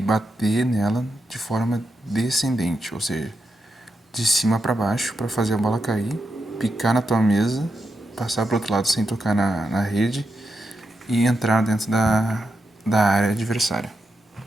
nela de forma descendente, ou seja, de cima para baixo para fazer a bola cair, picar na tua mesa, passar para o outro lado sem tocar na rede e entrar dentro da área adversária.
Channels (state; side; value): normal; both; correlation 0.85